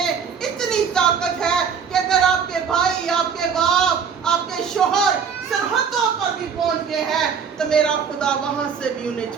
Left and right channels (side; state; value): left; quieter; 6.6 dB